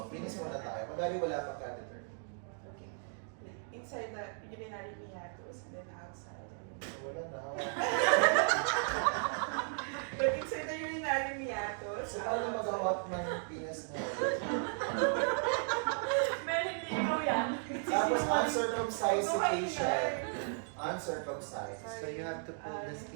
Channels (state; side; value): silent; left; 54 dB below the other